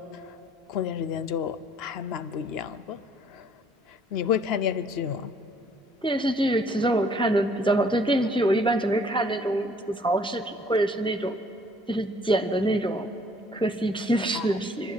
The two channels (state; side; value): normal; both; correlation 0.60